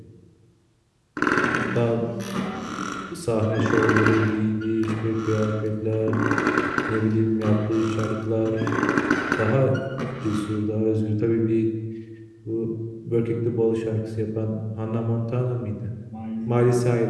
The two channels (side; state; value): both; identical; correlation 1.00